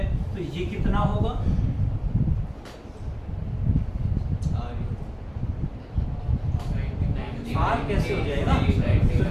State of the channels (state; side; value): identical; both; correlation 1.00